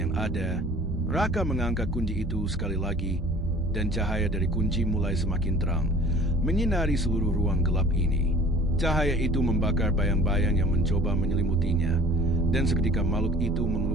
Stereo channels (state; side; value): normal; both; correlation 0.48